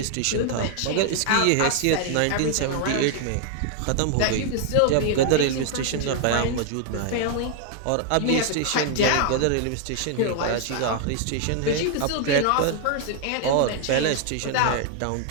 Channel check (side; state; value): both; different; correlation 0.00